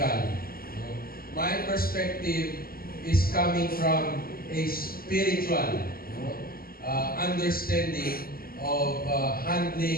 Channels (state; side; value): late; right; 0.43 ms